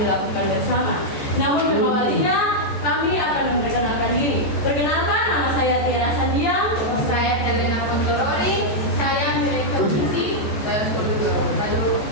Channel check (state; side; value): late; right; 14 ms